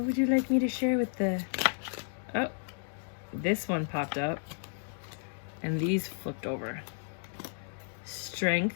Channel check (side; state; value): right; silent; 56 dB below the other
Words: would you like me to share with the... Oh, this one popped up. And these flipped over. Strength,